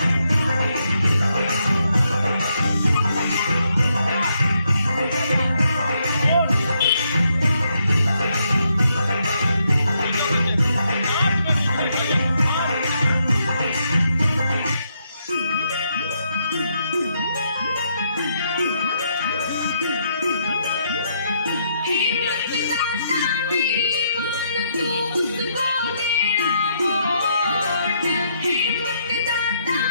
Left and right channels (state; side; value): inverted; both; correlation -0.77